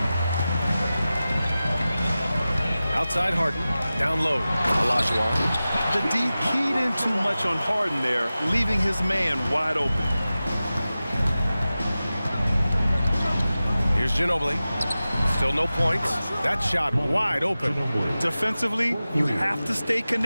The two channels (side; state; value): both; inverted; correlation -0.95